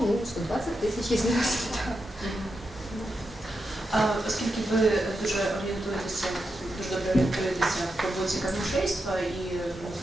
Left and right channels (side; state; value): both; normal; correlation 0.87